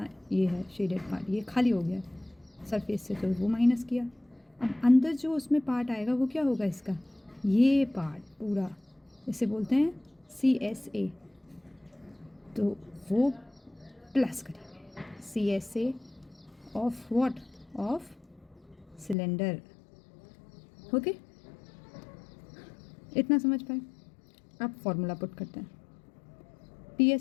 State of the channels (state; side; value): drops out; right; at 19.2 s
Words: ये है शेडेड पार्ट, ये खाली हो गया सरफेस से, तो वो माइनस किया. अब अंदर जो उसमें पार्ट आएगा वो क्या होगा, इसका ये पार्ट पूरा, इसे बोलते हैं CSA. तो वो प्लस करेंगे CSA of what, of cylinder. Okay, इतना समझ पाए. अब फॉर्मूला पुट करते हैं.